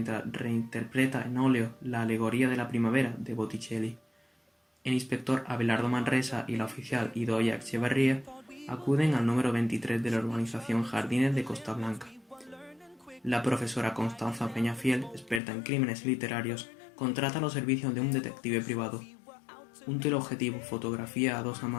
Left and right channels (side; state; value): right; drops out; at 15.4 s